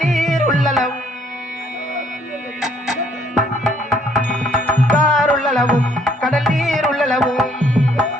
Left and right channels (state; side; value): normal; both; correlation 0.65